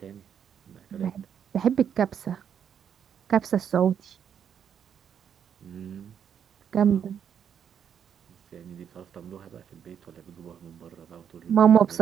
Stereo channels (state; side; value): quieter; left; 8.3 dB